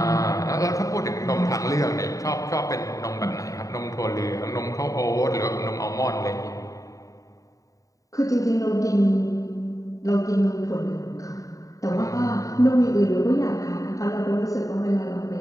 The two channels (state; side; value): late; right; 0.16 ms